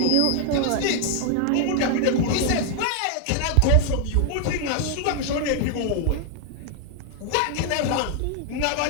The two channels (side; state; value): both; different; correlation 0.00